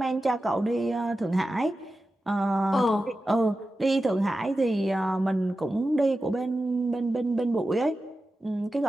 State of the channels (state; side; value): normal; both; correlation 0.93